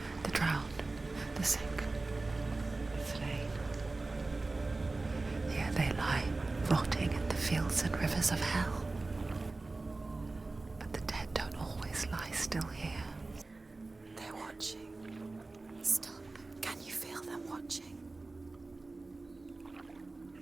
The drowned, the sick, the slain. Here they lie, rotting in the fields and rivers of hell. But the dead don't always lie still here. They're watching. Stop. Can you feel them watching?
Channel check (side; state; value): left; quieter; 3.4 dB